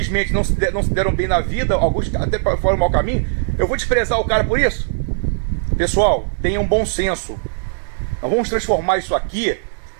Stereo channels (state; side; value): silent; left; digital silence